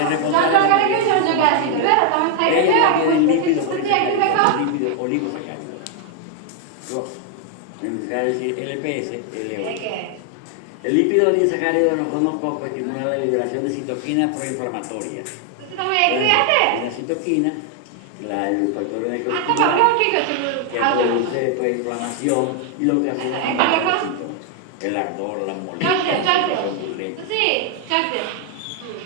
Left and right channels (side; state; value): both; different; correlation 0.00